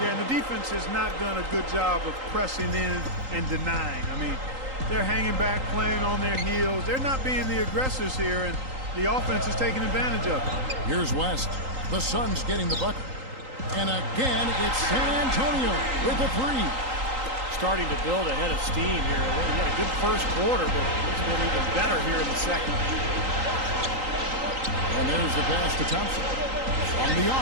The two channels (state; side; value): late; left; 3.8 ms